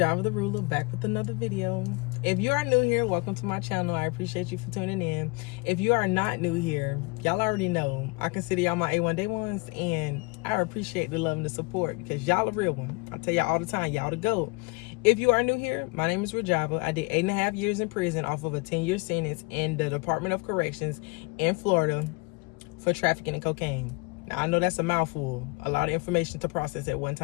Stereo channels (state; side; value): quieter; right; 27.6 dB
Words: the Ruler back with another video. If you are new here, welcome to my channel. I appreciate you for tuning in. If you are not new here, y'all already know I consider y'all my A1 day ones, and I appreciate the love and the support because y'all a real one. I tell y'all all the time, y'all the GOAT. If you are new here, my name is Rajava. I did 8.5 years in prison off of a 10-year sentence in the Department of Corrections in Florida for trafficking in cocaine. Now I know that's a mouthful, a lot of information to process at one